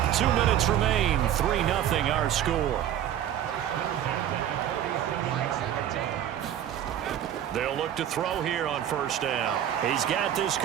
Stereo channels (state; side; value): quieter; left; 10.8 dB